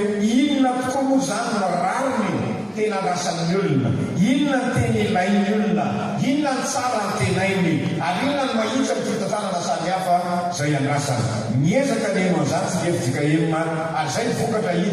inona tokoa moa zany no rariny tena rasan'ny olona, inona ny tena ilain'ny olona, inona ny tsara ny tenainy, ary inona ny mahitsy amin'ny fitantanana samihafa izay andrasany. Niezaka neno an'izany tsy FJKM, ary izay vokatra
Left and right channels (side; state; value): both; identical; correlation 1.00